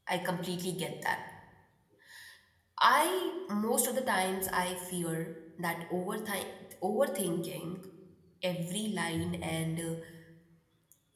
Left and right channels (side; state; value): both; identical; correlation 1.00